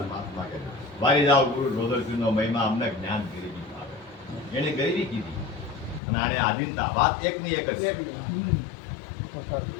મહાત્મા કહે મારી જાઓ ગુરુ ગોદર પીરનો મહિમા અમને જ્ઞાન ગરીબી આવે એને ગરીબી કીધી અને આને આધીનતા વાત એકની એક જ છે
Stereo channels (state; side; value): drops out; right; at 6.0 s